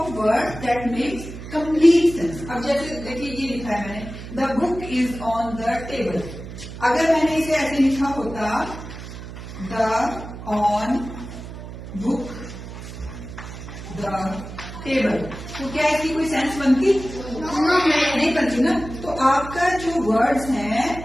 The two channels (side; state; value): right; noise; hum, 11 dB below the sound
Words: word that makes complete sense. अब जैसे देखिए ये लिखा है मैंने, the book is on the table. अगर मैंने इसे ऐसे लिखा होता, the on book the table, तो क्या इसकी कोई सेंस बनती? नहीं बनती ना। तो आपका जो वर्ड्स